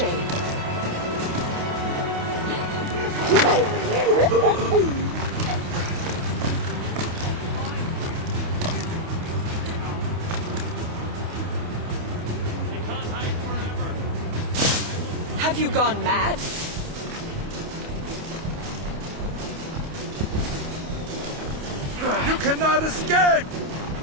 Have you gone mad? You cannot escape!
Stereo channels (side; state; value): left; late; 28 ms